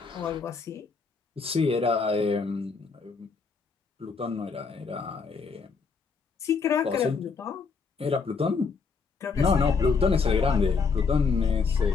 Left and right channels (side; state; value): right; quieter; 5.0 dB